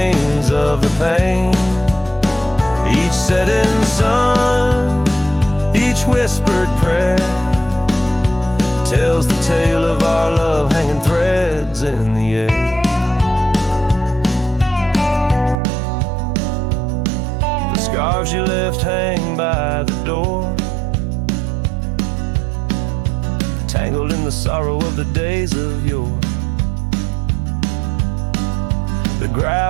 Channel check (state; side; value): drops out; left; at 15.6 s